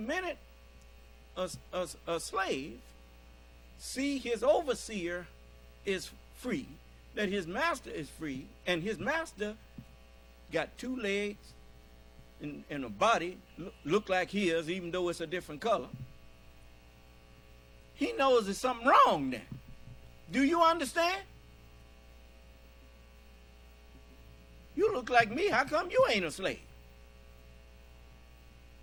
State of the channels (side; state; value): both; identical; correlation 1.00